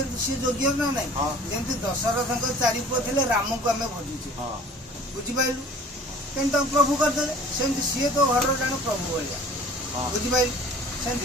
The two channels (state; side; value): normal; both; correlation 0.48